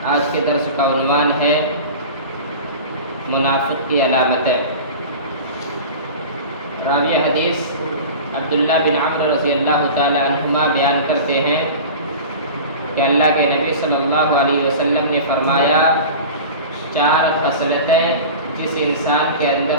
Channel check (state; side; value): inverted; both; correlation -0.34